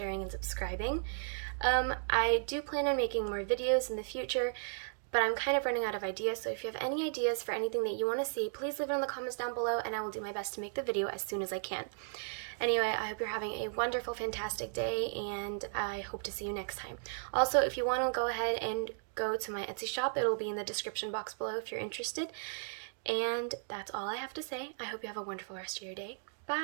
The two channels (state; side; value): silent; left; digital silence